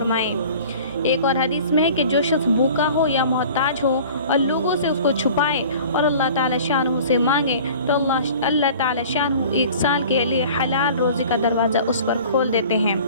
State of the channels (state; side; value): inverted; both; correlation -0.45